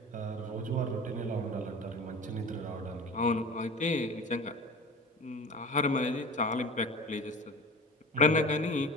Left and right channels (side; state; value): both; normal; correlation 0.37